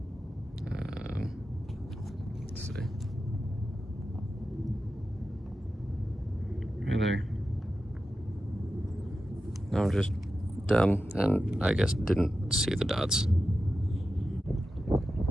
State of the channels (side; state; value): both; normal; correlation 0.92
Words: Let's see. Right there. I'm just dumb, and I guess didn't see the dots.